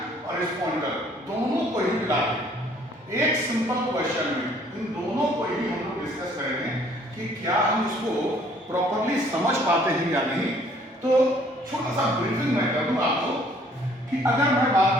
और इस पॉइंटर दोनों को ही मिला के एक सिंपल क्वेश्चन में इन दोनों को ही हम लोग डिस्कस करेंगे कि क्या हम इसको प्रॉपरली समझ पाते हैं या नहीं। तो छोटा सा ब्रीफिंग मैं कर दूं आपको कि अगर मैं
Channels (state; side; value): normal; both; correlation 0.60